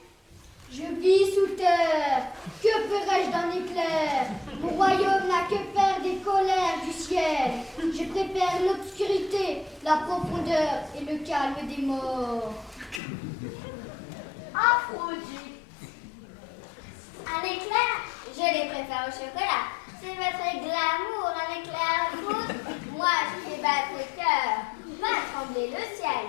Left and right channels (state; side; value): drops out; right; at 13.0 s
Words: Je vis sous terre. Que ferais-je d'un éclair? Mon royaume n'a que faire des colères du ciel. Je préfère l'obscurité, la profondeur et le calme des morts. Aphrodite. Un éclair, je les préfère au chocolat. C'est votre glamour, un éclair à foudre. Moi, je fais battre le cœur, va trembler le ciel.